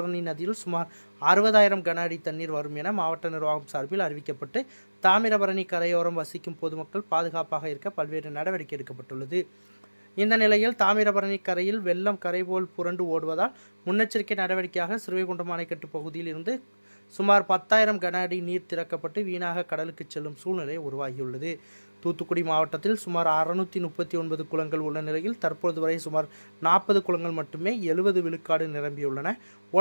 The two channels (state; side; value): inverted; both; correlation -1.00